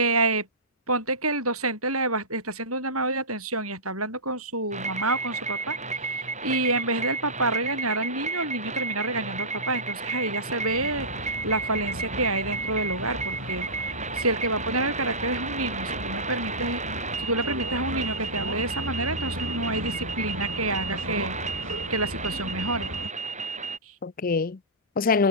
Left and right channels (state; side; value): normal; both; correlation -0.18